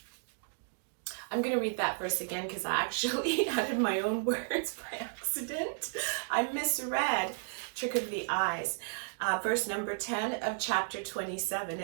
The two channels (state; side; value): silent; left; digital silence